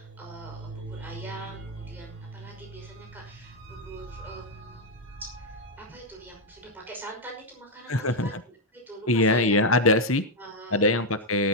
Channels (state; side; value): normal; both; correlation 0.00